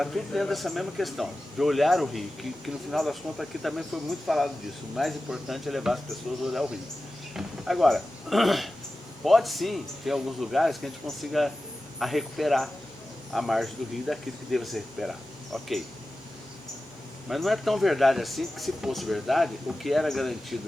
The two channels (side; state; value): both; normal; correlation 0.94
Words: tudo dentro dessa mesma questão, de olhar o rio, que no final das contas aqui também foi muito falado disso. O mais importante é levar as pessoas a olhar o rio. Agora, pode sim ter alguns lugares que a gente consiga recuperar a margem do rio daquilo que deva ser recuperado. Ok. Mas não é tão verdade assim, que se fosse verdade, o que era